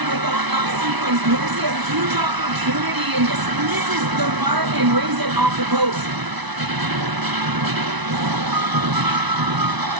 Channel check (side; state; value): left; late; 1.0 ms